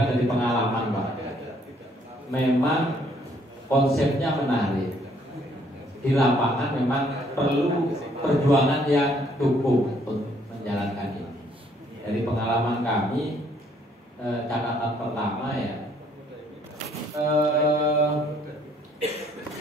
dari pengalaman, Pak. Memang konsepnya menarik. Di lapangan memang perlu perjuangan yang cukup untuk menjalankan ini. Dari pengalaman kami, catatan pertama ya,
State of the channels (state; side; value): normal; both; correlation 0.65